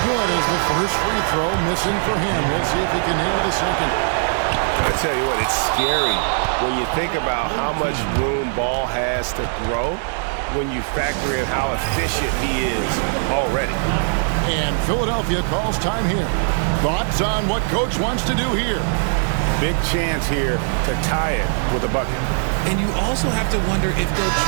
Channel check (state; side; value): silent; left; digital silence